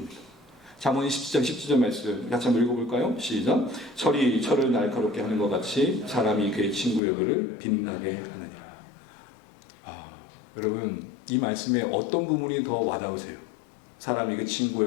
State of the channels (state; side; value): drops out; right; at 7.0 s